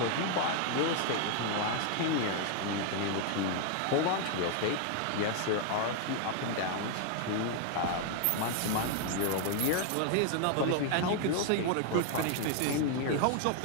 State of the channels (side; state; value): both; different; correlation 0.00